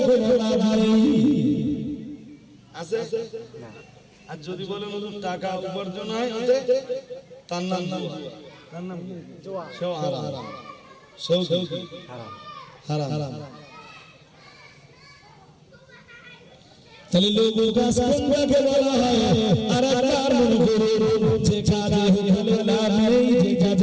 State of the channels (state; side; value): identical; both; correlation 1.00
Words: কোনো লাভ নেই আছে না আর যদি বলে হুজুর টাকা উপার্জন হয় ওতে তার নাম জুয়া সেও হারাম সেও হারাম তাহলে লঘু কাজ কোনটাকে বলা হয় আর তার মনে করে যে কাজে হলে লাভ নেই যে